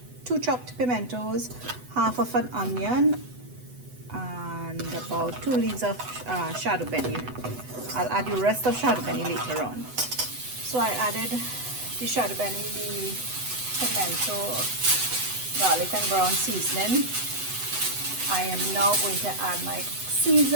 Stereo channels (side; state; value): left; late; 8.0 ms